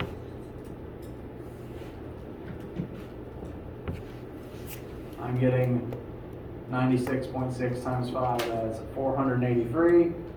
I'm getting 96.6 times 5 as 483.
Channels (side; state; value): both; identical; correlation 1.00